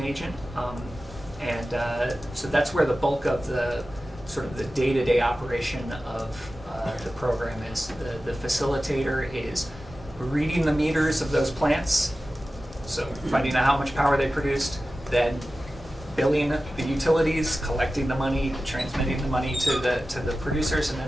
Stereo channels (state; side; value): normal; both; correlation 0.95